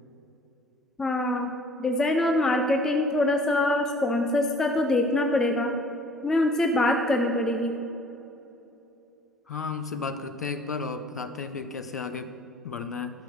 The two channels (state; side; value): normal; both; correlation 0.52